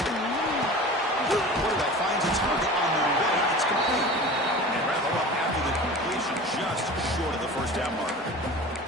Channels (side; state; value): both; normal; correlation 0.37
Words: it. Quarterback finds a target on the way. It's complete. And rather up after the completion, just short of the first down marker.